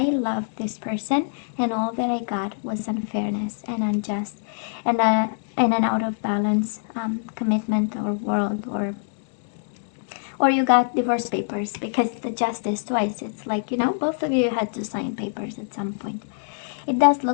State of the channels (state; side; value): silent; right; digital silence